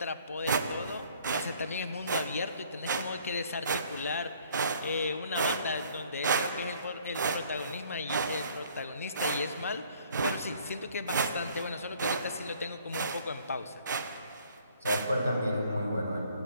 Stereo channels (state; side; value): inverted; both; correlation -0.58